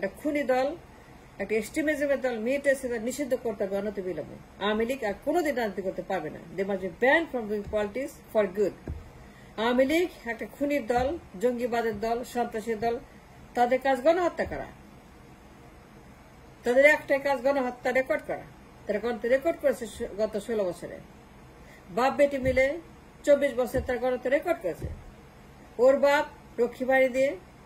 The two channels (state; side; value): identical; both; correlation 1.00